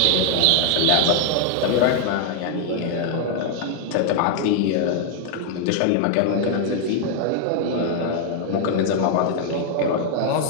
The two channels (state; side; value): different; both; correlation 0.00